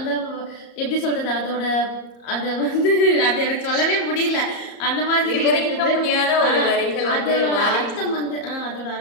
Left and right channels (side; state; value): right; late; 34 ms